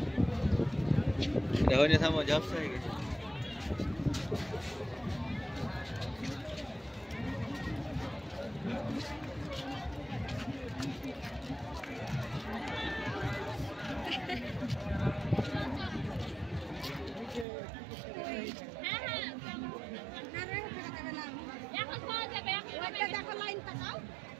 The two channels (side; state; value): left; drops out; at 17.4 s